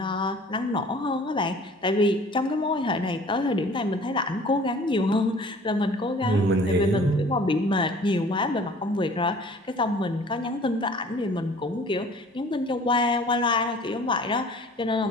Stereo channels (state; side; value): normal; both; correlation 0.49